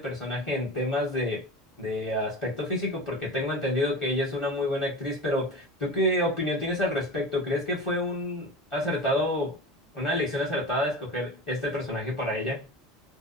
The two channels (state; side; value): normal; both; correlation 0.31